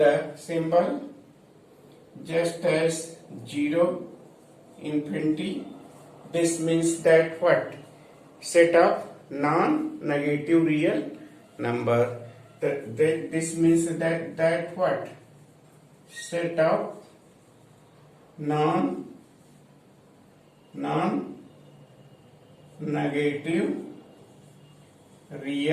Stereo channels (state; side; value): identical; both; correlation 1.00